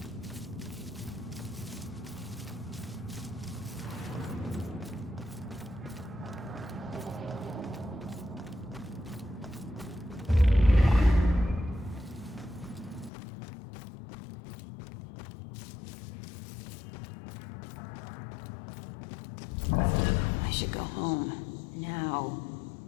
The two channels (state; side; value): drops out; right; at 13.1 s